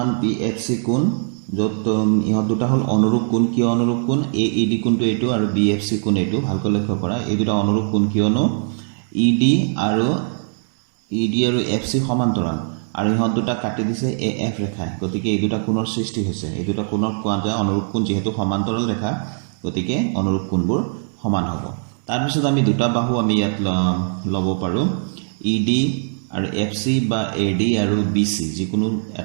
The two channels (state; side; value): silent; left; digital silence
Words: বি এফ চি কোণ, য'ত ইহঁত দুটা হ'ল অনুৰূপ কোণ। কিয় অনুৰূপ কোণ? এ ই ডি কোণটো এইটো আৰু বি এফ চি কোণ এইটো। ভালকৈ লক্ষ্য কৰা, এই দুটা অনুৰূপ কোণ কিয়নো ই ডি আৰু এফ চি সমান্তৰাল আৰু ইহঁত দুটা কাটি দিছে এ এফ ৰেখাই, গতিকে এই দুটা কোণৰ সৃষ্টি হৈছে। এই দুটা কোণক কোৱা যায় অনুৰূপ কোণ, যিহেতু সমান্তৰাল ৰেখা গতিকে অনুৰূপ কোণবোৰ সমান হ'ব। তাৰপিছত আমি দুটা বাহু আমি ইয়াত ল'ব পাৰোঁ, ই ডি আৰু এফ চি বা এ ডি আৰু বি চি, যিকোনো